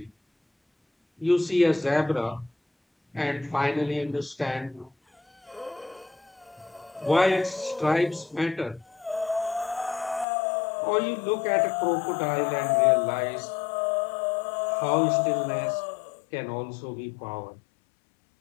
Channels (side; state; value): right; drops out; at 10.2 s